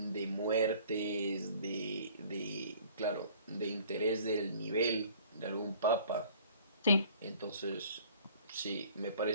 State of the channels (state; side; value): inverted; both; correlation -0.52